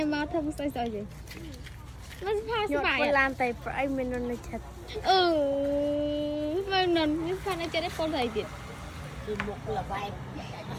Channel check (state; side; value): identical; both; correlation 1.00